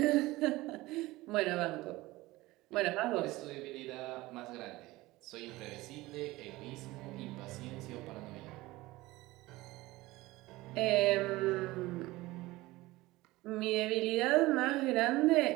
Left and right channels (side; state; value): left; quieter; 19.4 dB